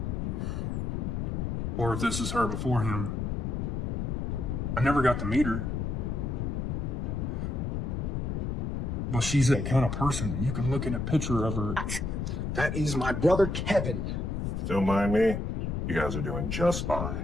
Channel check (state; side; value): noise; left; rumble, 1 dB below the sound